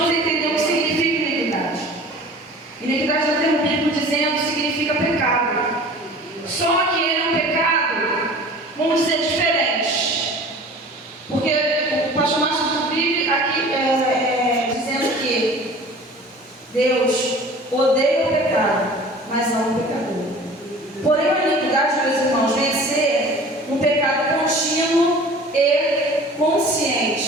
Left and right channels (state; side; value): normal; both; correlation 0.43